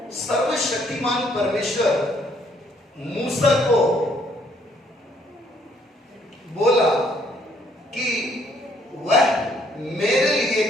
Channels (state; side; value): normal; both; correlation 0.67